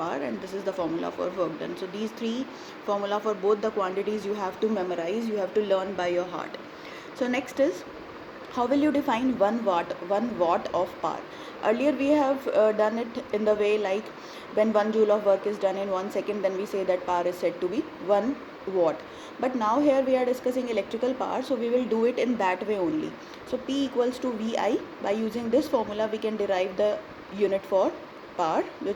and this is the formula for work done. So these three formula for both the quantities you have to memorize, you have to learn by your heart. So next is, how will you define 1 watt of power? Earlier we have done it in the way like when 1 joule of work is done in 1 second, then we say that power is said to be 1 watt. But now here we are discussing electrical power, so we will do it in that way only. So P equals to VI. By using this formula we can derive the unit for power,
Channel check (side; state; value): both; identical; correlation 1.00